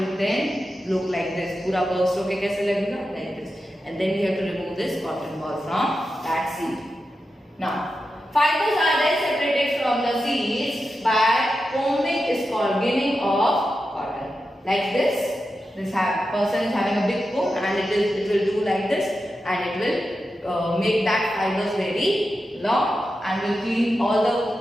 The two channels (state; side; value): normal; both; correlation 0.90